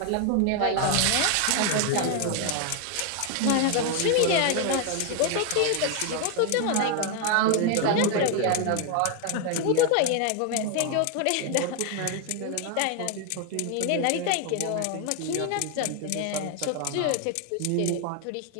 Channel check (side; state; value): both; different; correlation 0.01